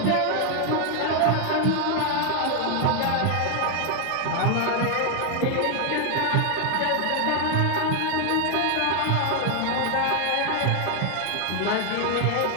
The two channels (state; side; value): different; both; correlation 0.00